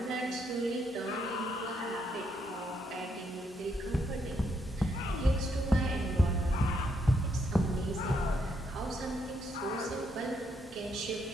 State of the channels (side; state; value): both; normal; correlation 0.76